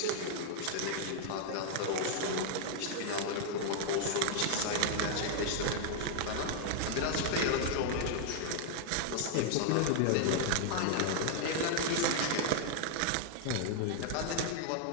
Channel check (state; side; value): different; both; correlation -0.01